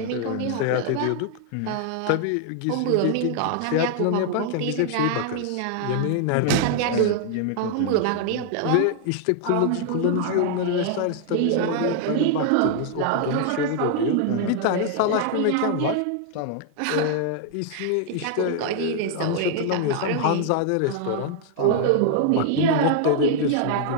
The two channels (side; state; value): both; different; correlation 0.00